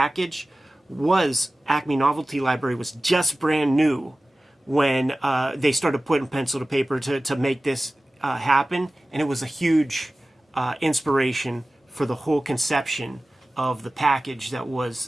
was Acme Novelty Library was just brand new when they started putting pencil to paper to make this happen, and it was a huge inspiration for the whole conception of the package that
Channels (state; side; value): normal; both; correlation 0.97